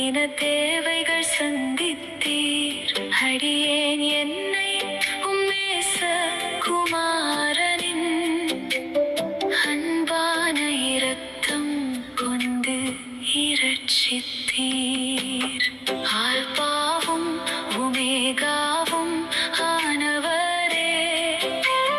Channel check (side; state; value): both; identical; correlation 1.00